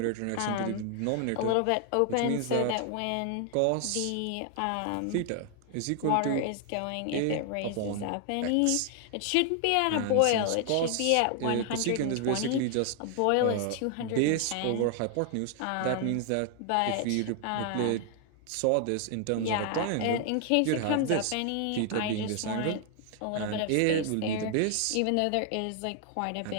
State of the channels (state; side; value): different; both; correlation 0.00